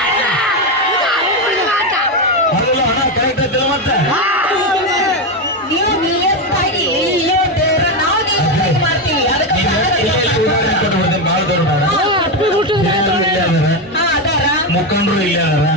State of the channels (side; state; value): both; normal; correlation 0.10